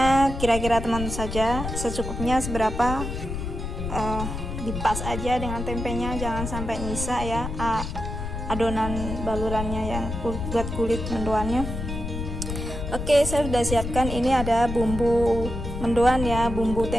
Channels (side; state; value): left; noise; rumble, 5 dB below the sound